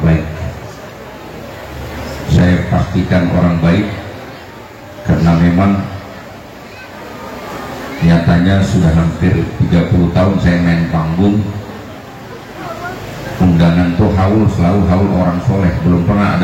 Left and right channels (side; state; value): both; identical; correlation 1.00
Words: Saya pastikan orang baik, karena memang nyatanya sudah hampir 30 tahun saya main panggung, undangan tuh haul selalu haul orang soleh, belum pernah